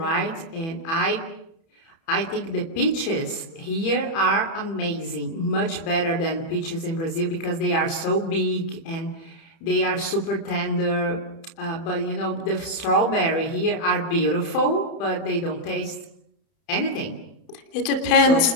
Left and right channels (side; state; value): right; late; 30 ms